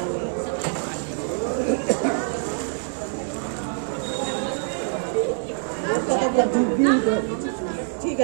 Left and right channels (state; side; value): silent; left; 62 dB below the other